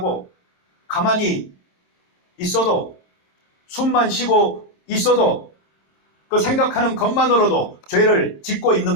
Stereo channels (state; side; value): late; right; 26 ms